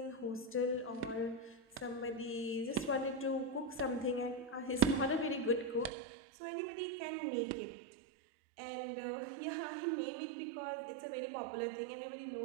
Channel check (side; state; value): left; drops out; at 5.9 s